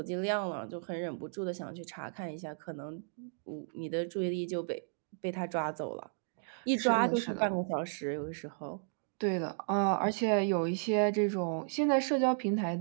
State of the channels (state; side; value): silent; left; digital silence